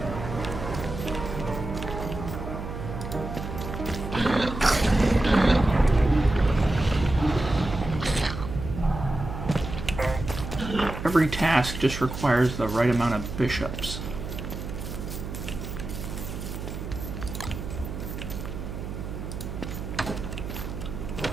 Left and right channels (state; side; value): noise; right; hum, 7 dB below the sound